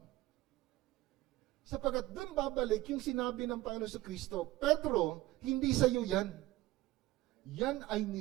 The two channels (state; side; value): quieter; left; 17.6 dB